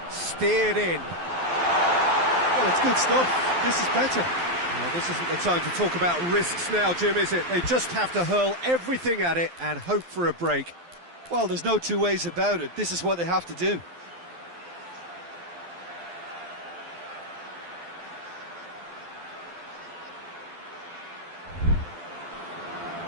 Steered in. Well, it's good stuff. This is better. Well, this isn't the time to talk about risks now, Jim, is it? They just have to hurl everything at it and hope for a break. Well, there's no two ways about it. This is what they have to do.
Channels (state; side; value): late; left; 12 ms